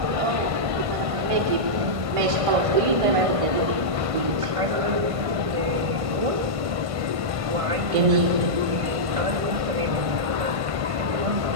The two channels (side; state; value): left; late; 1.5 ms